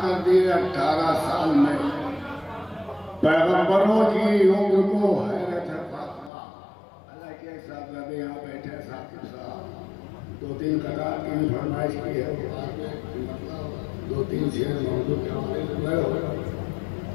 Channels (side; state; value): right; drops out; at 6.3 s